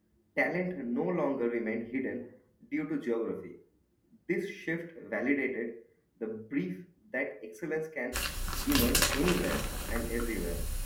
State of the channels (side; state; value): both; identical; correlation 1.00